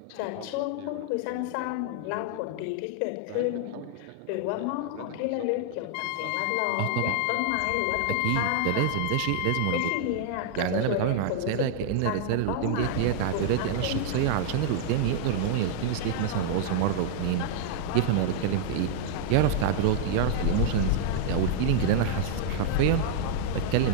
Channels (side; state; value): both; different; correlation -0.01